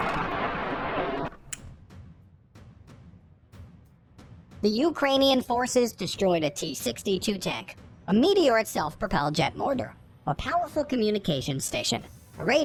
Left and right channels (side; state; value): both; identical; correlation 1.00